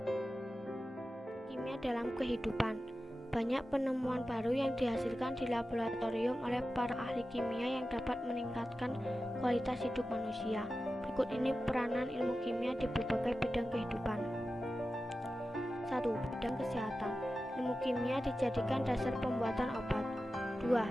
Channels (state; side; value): normal; both; correlation 0.93